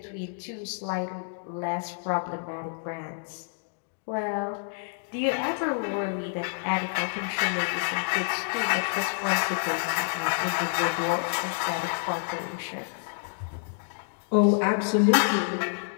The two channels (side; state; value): right; silent; digital silence